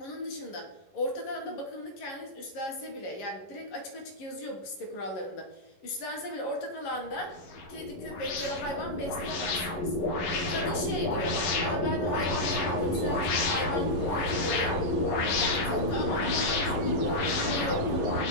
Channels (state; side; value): late; right; 11 ms